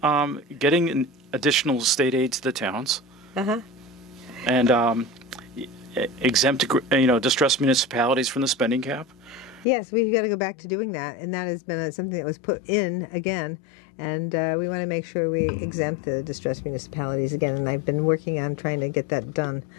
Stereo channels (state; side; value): drops out; right; at 9.7 s